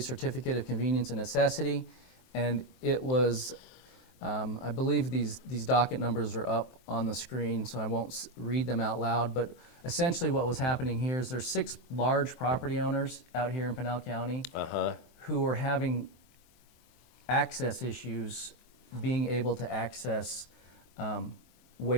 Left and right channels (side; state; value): right; late; 23 ms